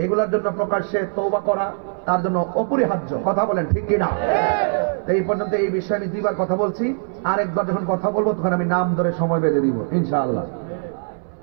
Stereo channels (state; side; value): silent; left; 65 dB below the other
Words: এগুলোর জন্য প্রকাশ্যে তওবা করা তার জন্য অপরিহার্য। কথা বলেন ঠিক কিনা? এই পর্যন্ত এই বিষয়ে আমি দুইবার কথা বলছি, আরেকবার যখন কথা বলবো তখন আমি নাম ধরে সময় বেঁধে দিব ইনশাআল্লাহ।